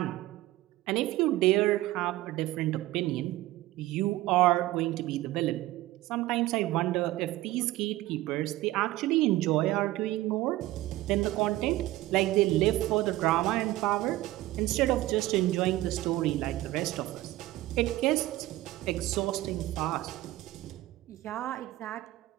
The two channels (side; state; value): left; quieter; 16.8 dB